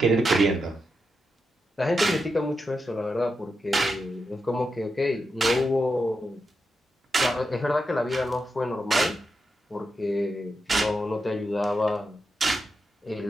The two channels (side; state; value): both; normal; correlation 0.87